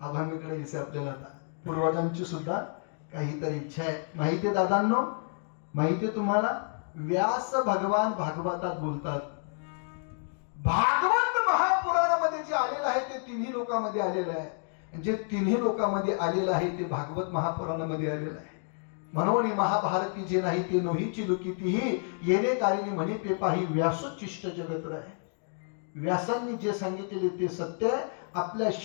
आभामीकडे दिसे आपल्याला आता पूर्वजांची सुद्धा काहीतरी इच्छा आहे. माहितीये दादांनो, माहितीये तुम्हाला, व्यास भगवान भागवतात बोलतात. भागवत महापुराणामध्ये जे आलेलं आहे ते तिन्ही लोकांमध्ये आलेलं आहे. जे तिन्ही लोकांमध्ये आलेलं आहे ते भागवत महापुराणामध्ये आलेलं आहे. म्हणून महाभारती जे नाही ते नोहीची लुकितीही येणे कारिणी म्हणे ते पाही व्यासोच्चिष्ट जगत आहे. व्यासांनी जे सांगितलेले ते सत्य आहे. आपल्या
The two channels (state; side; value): silent; right; 58 dB below the other